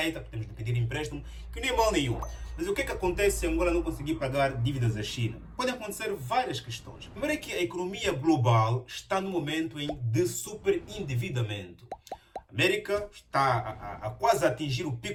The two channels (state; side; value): identical; both; correlation 1.00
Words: temos de pedir empréstimo, que nem mal nenhum. Mas o que é que acontece se Angola não conseguir pagar dívidas à China? Podem acontecer várias questões. Primeiro é que a economia global está no momento de superendividamento. A América está a quase atingir o